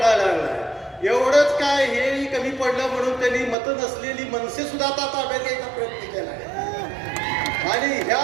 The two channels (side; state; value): left; drops out; at 3.6 s